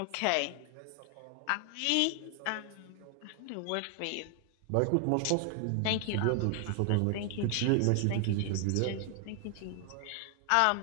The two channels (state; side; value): different; both; correlation 0.00